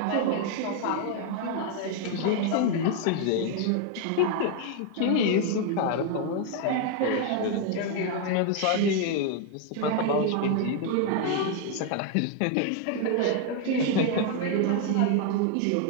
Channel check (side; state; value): both; different; correlation 0.00